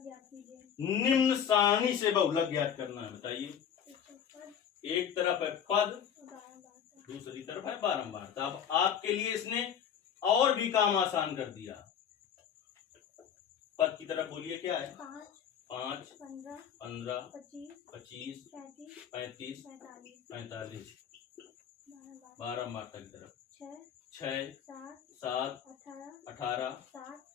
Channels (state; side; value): quieter; right; 8.5 dB